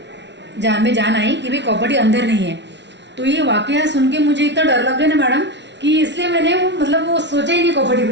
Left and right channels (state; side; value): late; left; 0.51 ms